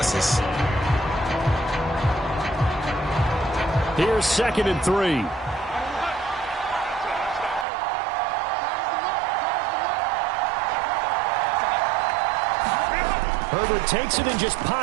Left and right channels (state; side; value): drops out; left; at 7.7 s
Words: Here's 2nd and 3. Herbert takes it and just